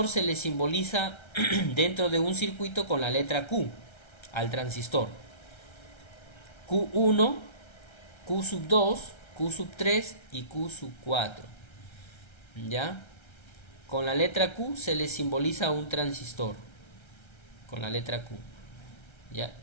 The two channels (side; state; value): right; late; 1.3 ms